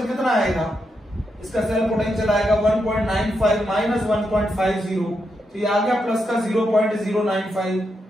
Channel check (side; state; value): both; normal; correlation 0.83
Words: कितना आएगा? इसका सेल पोटेंशियल आएगा 1.95 माइनस 1.50, तो ये आ गया प्लस का 0.095।